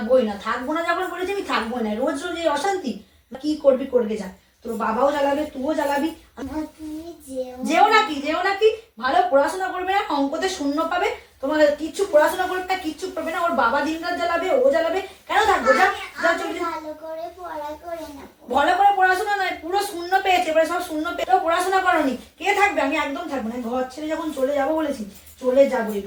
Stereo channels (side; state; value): both; identical; correlation 1.00